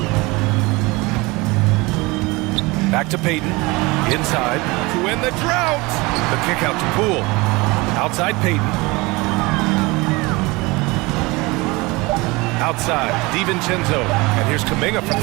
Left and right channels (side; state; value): left; quieter; 23.9 dB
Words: Back to Payton. Inside to win the drought. The kick out to Poole. Outside Payton. Outside, DiVincenzo. And here's Kuminga for